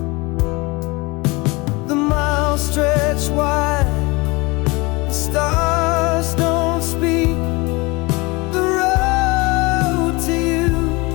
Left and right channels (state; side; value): quieter; right; 25.0 dB